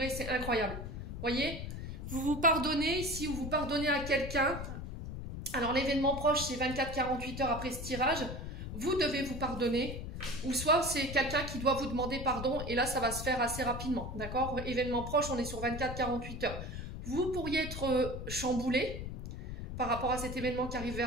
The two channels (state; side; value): noise; left; rumble, 7 dB below the sound